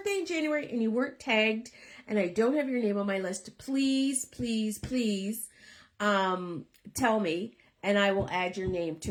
in January and you weren't tagged and I don't have your name on my list, please, please, please tell me and I will add your name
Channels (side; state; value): both; identical; correlation 1.00